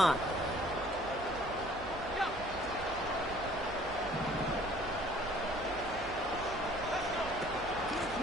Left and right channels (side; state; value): right; noise; hum, 15 dB below the sound